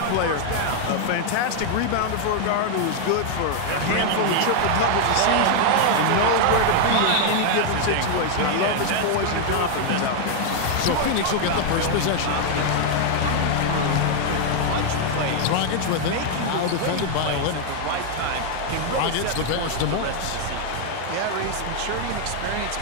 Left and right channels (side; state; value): both; different; correlation 0.00